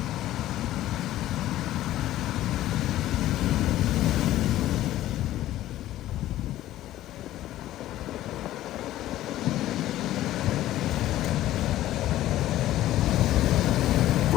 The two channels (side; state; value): right; quieter; 14.2 dB